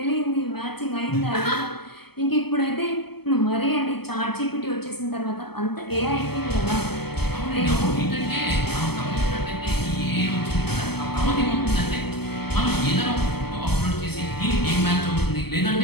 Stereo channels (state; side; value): late; right; 0.96 ms